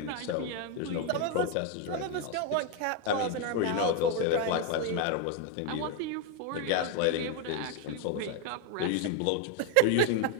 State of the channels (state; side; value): different; both; correlation 0.01